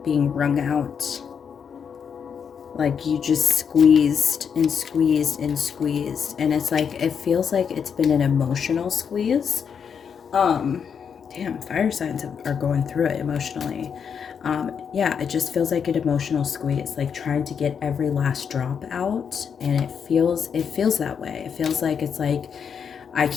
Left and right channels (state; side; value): quieter; right; 7.0 dB